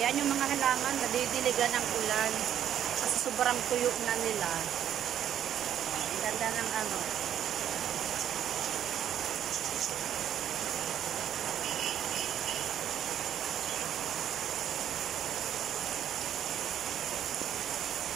yung mga halaman, nadidiligan ng ulan. Kasi sobrang tuyo na nila. Ang ganda ng ano.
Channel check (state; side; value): quieter; left; 10.2 dB